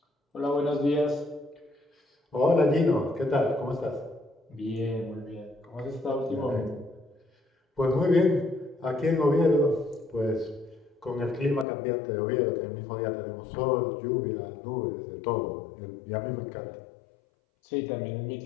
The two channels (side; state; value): right; drops out; at 11.7 s